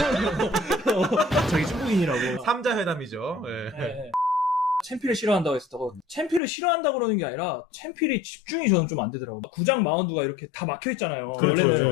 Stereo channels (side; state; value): right; drops out; at 6.4 s